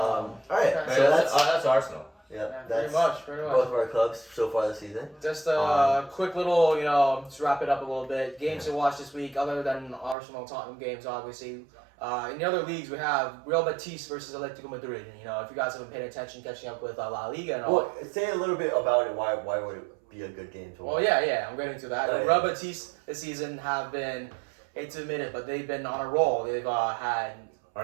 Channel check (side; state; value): left; drops out; at 10.2 s